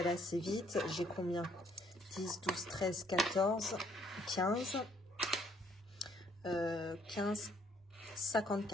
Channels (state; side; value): normal; both; correlation 0.65